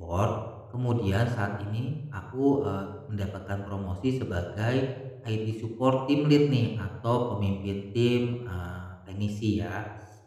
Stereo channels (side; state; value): both; identical; correlation 1.00